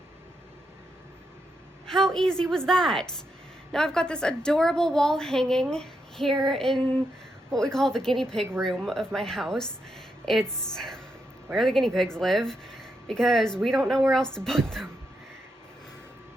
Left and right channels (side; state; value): both; normal; correlation 0.83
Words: How easy was that? Now I've got this adorable wall hanging here in what we call the guinea pig room of my house. It's where the guinea pigs live because we don't know where else to put them.